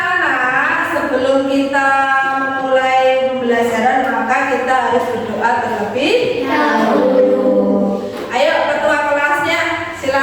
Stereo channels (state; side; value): identical; both; correlation 1.00